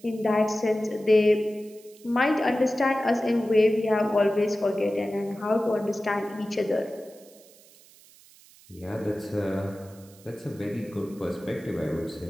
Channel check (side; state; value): right; noise; hiss, 25 dB below the sound